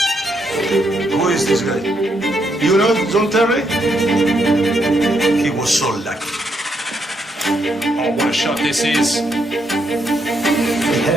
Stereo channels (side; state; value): both; normal; correlation 0.77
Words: Who is this guy? You know John Terry? He was so lucky. Oh, what a shot this is. We